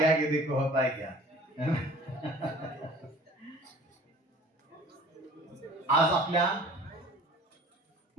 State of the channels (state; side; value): normal; both; correlation 0.46